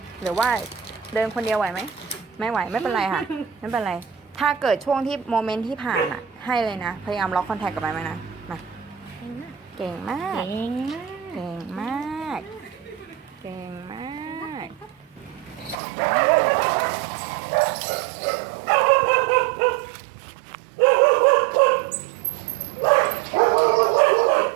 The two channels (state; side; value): drops out; left; at 15.8 s